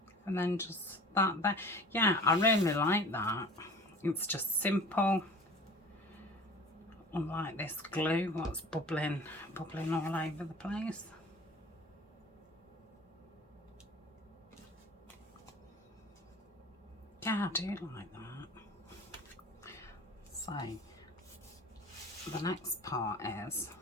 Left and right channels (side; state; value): both; normal; correlation 0.43